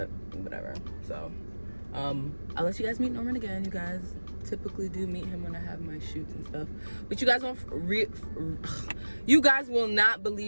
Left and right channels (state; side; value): inverted; both; correlation -1.00